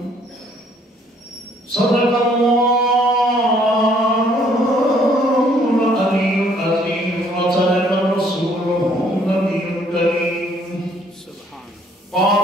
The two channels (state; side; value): normal; both; correlation 0.63